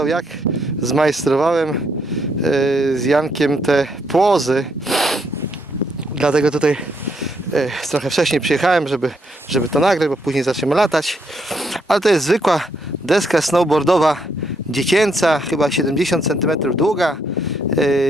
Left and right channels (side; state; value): both; normal; correlation 0.75